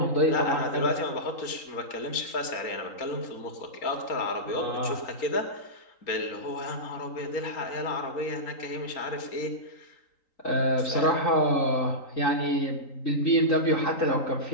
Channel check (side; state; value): right; late; 3.9 ms